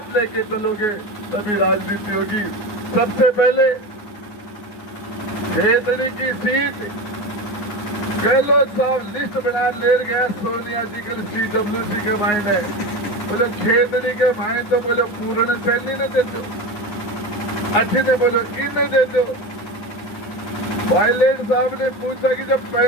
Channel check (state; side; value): late; right; 10 ms